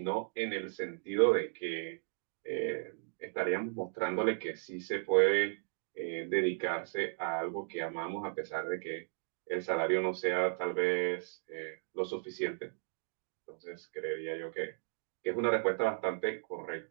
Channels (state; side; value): silent; left; digital silence